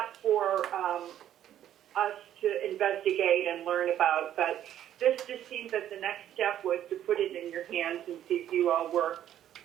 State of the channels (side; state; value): left; quieter; 11.2 dB